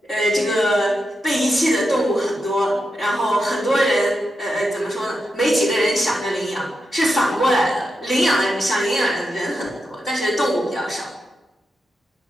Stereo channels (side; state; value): both; normal; correlation 0.87